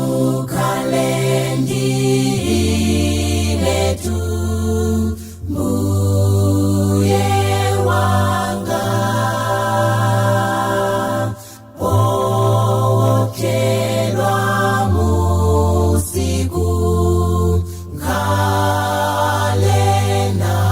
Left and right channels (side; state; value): both; identical; correlation 1.00